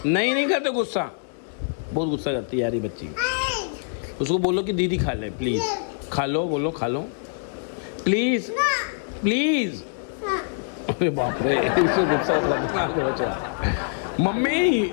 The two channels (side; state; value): right; silent; digital silence